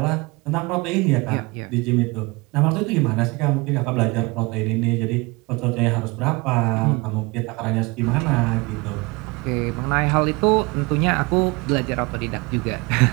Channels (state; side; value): quieter; left; 25.8 dB